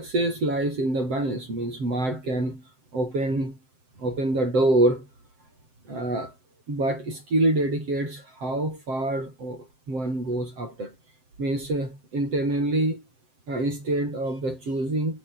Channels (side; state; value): left; late; 7.7 ms